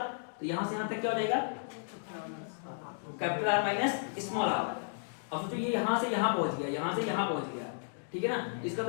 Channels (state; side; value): silent; right; digital silence